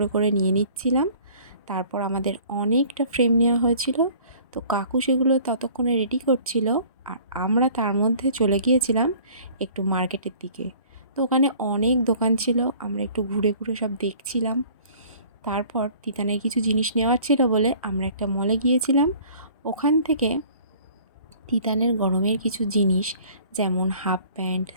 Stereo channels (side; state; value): both; inverted; correlation -0.51